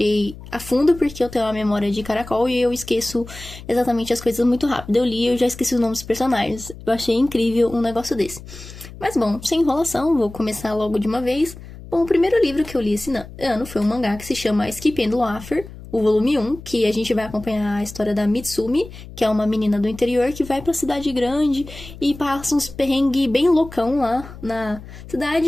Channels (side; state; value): left; noise; hum, 15 dB below the sound